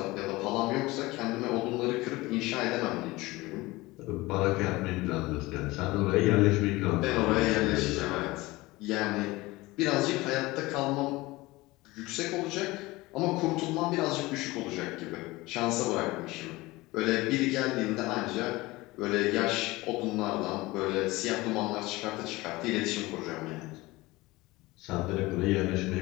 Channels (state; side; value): quieter; right; 20.6 dB